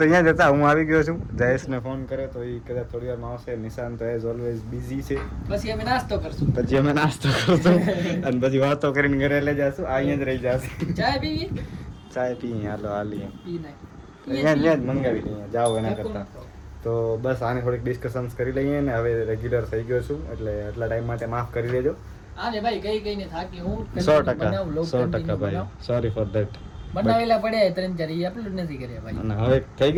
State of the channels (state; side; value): identical; both; correlation 1.00